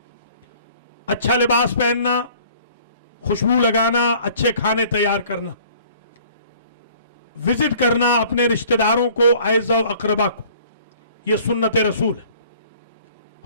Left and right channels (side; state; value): both; inverted; correlation -0.53